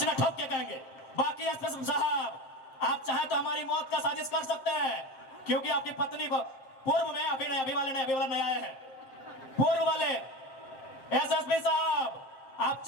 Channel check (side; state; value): right; late; 7.6 ms